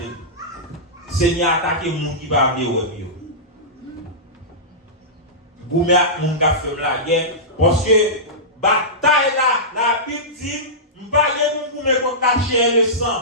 Seigneur attaquer moun qui va venir ouais yo. Goumé moun ka fait la guerre parce que bataille là, la Bible dit m'pa gen moun goumé contre la chair le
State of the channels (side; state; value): both; normal; correlation -0.15